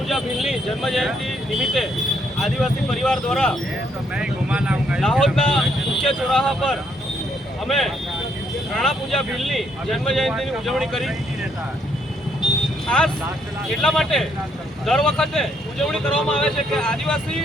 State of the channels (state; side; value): normal; both; correlation 0.72